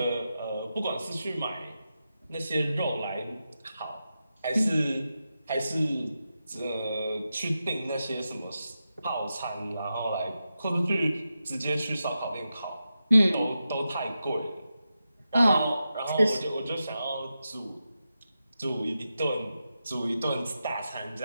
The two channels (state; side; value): inverted; both; correlation -0.90